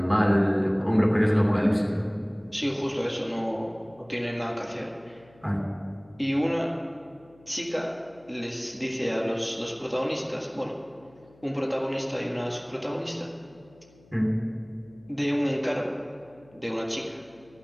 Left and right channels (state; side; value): noise; left; hum, 27 dB below the sound